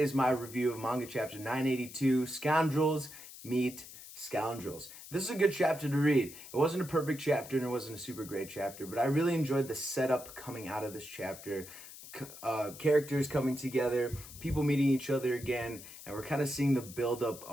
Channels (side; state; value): left; noise; hiss, 15 dB below the sound